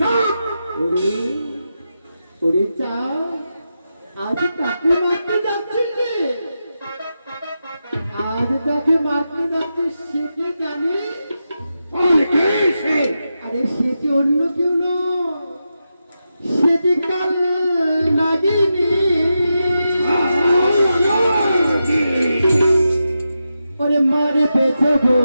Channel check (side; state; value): both; inverted; correlation -0.89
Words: ওরে চা আজ কাকে মারতে যাচ্ছিস রে? আজ তাকে মারতে যাচ্ছিস সে কি জানি? আরে সে কি অন্য কেউ নয়, সে যে কাল নাগিনী। ওরে মারে পেছবো